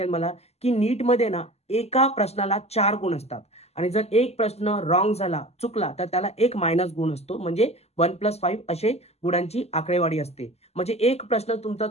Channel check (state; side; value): late; right; 0.30 ms